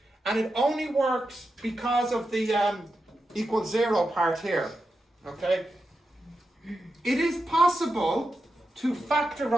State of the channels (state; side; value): normal; both; correlation 0.89